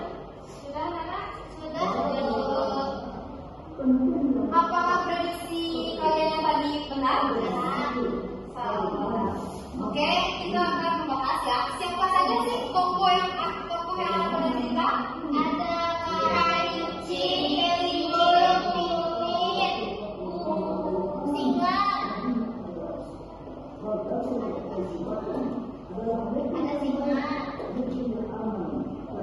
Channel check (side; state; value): both; identical; correlation 1.00